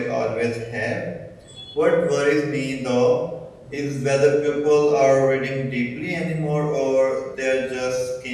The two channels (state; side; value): identical; both; correlation 1.00